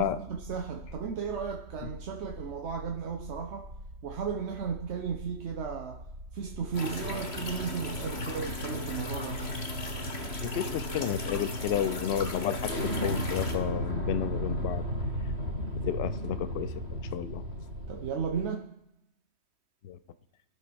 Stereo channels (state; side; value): late; left; 3.0 ms